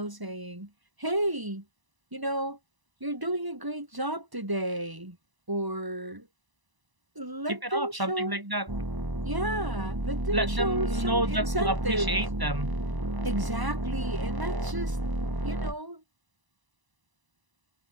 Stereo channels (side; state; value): left; late; 1.0 ms